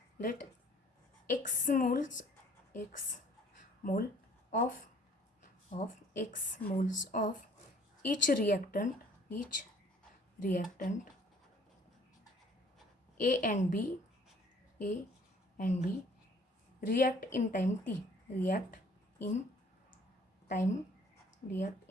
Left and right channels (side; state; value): both; normal; correlation 0.56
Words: x mole of each reactant A and B react in time t. React in time